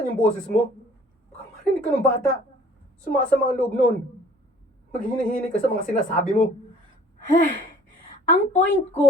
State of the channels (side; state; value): both; normal; correlation 0.53